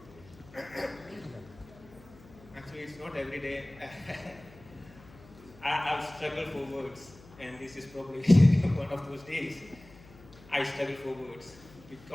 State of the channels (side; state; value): left; noise; hum, 22 dB below the sound